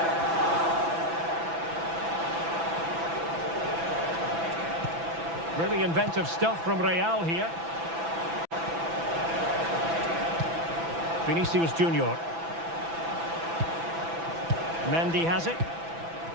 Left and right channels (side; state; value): left; late; 6.0 ms